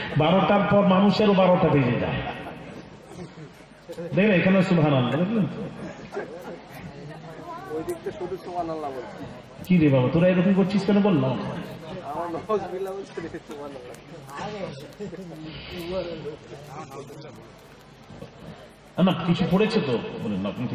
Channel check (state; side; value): identical; both; correlation 1.00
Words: 12টার পর মানুষেরও 12টা বেজে যায়। দেখলেন এখানে সুবহানাল্লাহ, দেখলেন কি রে বাবা, তোরা এরকম করছিস কেন? বললাম না, কিছু পড়েছে তো বলেন আপনি,